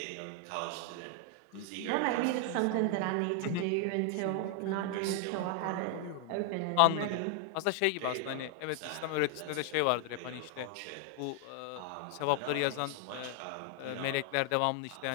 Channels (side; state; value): both; different; correlation 0.00